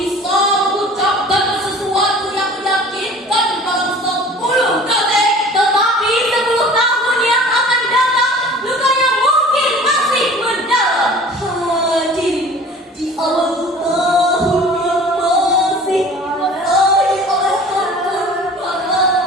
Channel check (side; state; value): both; normal; correlation 0.44